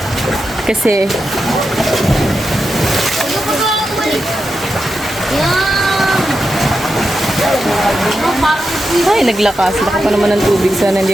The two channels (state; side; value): normal; both; correlation 0.88